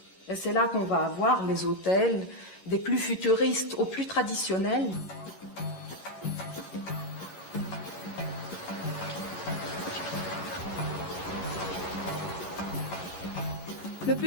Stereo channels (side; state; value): right; late; 14 ms